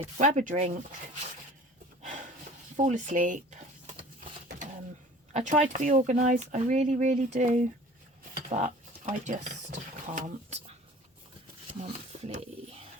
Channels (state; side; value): normal; both; correlation 0.46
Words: grab a drink, fall asleep. I try to be organised. I really, really do. But I just can't. Monthly.